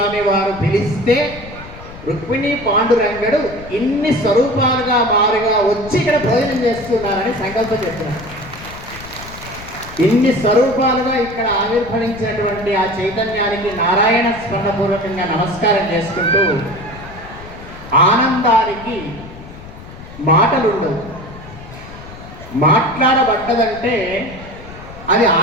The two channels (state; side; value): noise; left; rumble, 16 dB below the sound